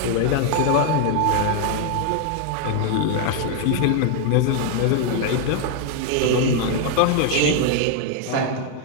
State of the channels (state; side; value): different; both; correlation 0.00